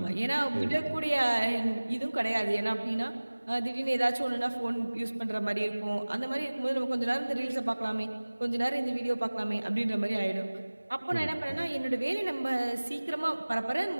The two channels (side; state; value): both; inverted; correlation -1.00